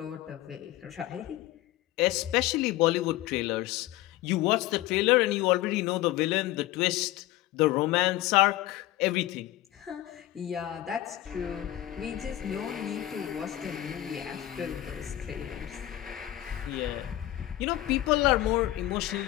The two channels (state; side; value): quieter; right; 14.9 dB